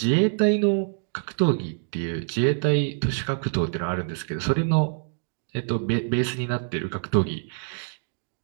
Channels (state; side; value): silent; left; digital silence